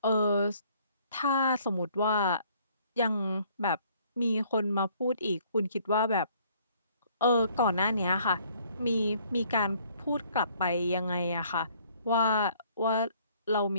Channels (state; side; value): inverted; both; correlation -0.61